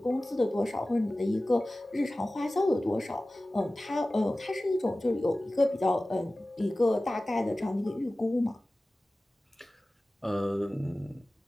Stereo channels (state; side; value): normal; both; correlation 0.97